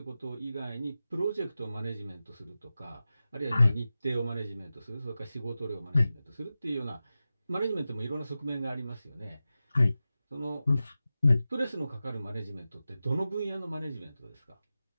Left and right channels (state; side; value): inverted; both; correlation -0.94